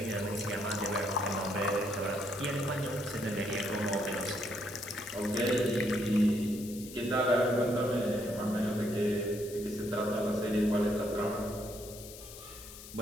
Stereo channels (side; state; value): left; noise; hiss, 15 dB below the sound